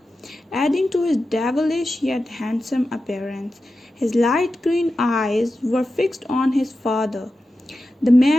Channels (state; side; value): normal; both; correlation 0.92